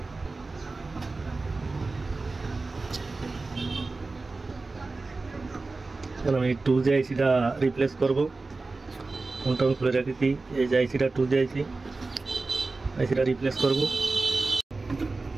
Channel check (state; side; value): quieter; left; 3.6 dB